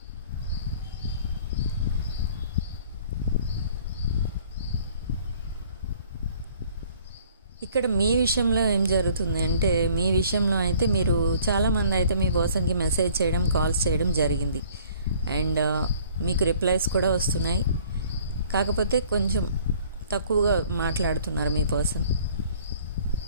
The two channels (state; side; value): inverted; both; correlation -0.55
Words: ఇక్కడ మీ విషయంలో ఏం జరుగుతుంది అంటే, మీ విషయంలో అయితే మీరు చాలామంది అయితే మీ పర్సన్కి మెసేజ్ చేయడం, కాల్స్ చేయడం జరిగింది. అండ్ మీకు రిప్లైస్ కూడా వస్తున్నాయి. కాకపోతే కొంచెం తక్కువగా మాట్లాడుతున్నారు మీ పర్సన్.